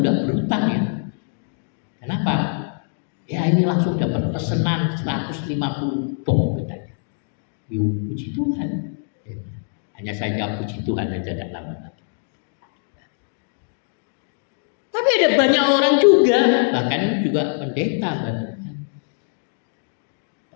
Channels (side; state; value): right; silent; 63 dB below the other